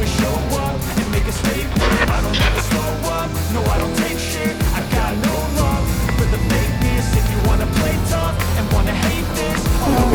show up and make a statement. I don't ever slow up, no I don't take shit. I got no love for the fakeness. If you wanna play tough and wanna hate this, I'll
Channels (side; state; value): both; identical; correlation 1.00